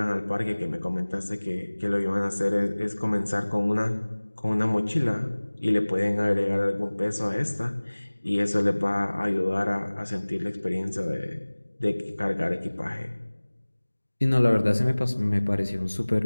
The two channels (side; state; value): both; inverted; correlation -1.00